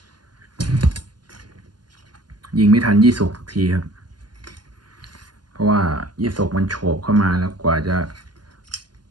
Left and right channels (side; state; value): left; late; 0.71 ms